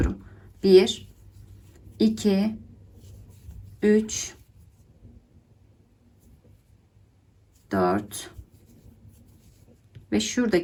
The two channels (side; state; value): both; identical; correlation 1.00